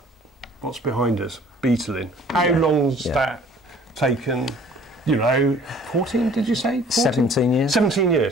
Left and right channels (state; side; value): normal; both; correlation 0.53